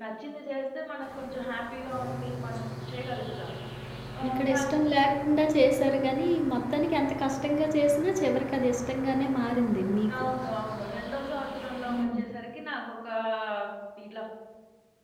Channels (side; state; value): both; identical; correlation 1.00